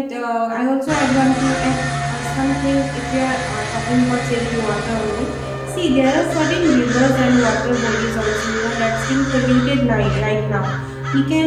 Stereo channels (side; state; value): both; identical; correlation 1.00